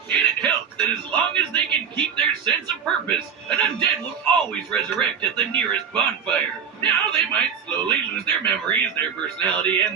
And it helps that as long as they can keep their sense of purpose, an undead will always resurrect at the nearest bonfire. Now they might slowly lose their memories, their personality,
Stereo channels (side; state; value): left; quieter; 7.2 dB